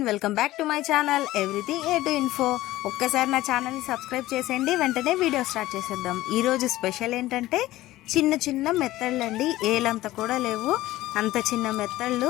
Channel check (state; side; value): quieter; right; 16.4 dB